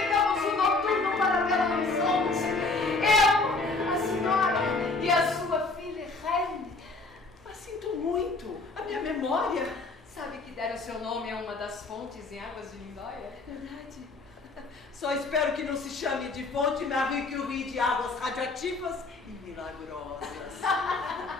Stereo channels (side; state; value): right; quieter; 3.6 dB